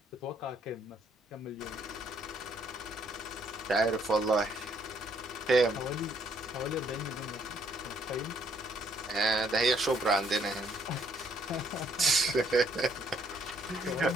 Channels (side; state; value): both; normal; correlation 0.68